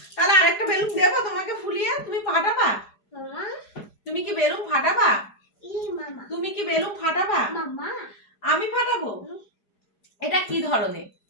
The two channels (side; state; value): right; late; 4.9 ms